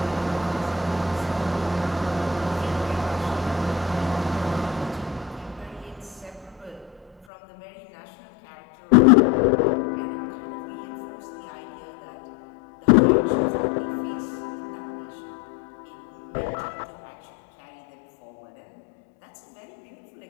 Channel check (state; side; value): drops out; right; at 7.2 s